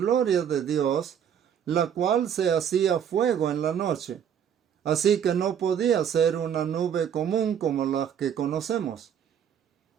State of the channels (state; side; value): quieter; left; 8.6 dB